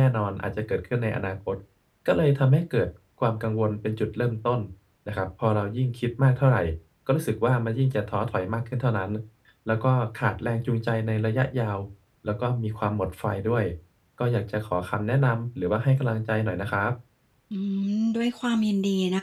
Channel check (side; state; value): both; identical; correlation 1.00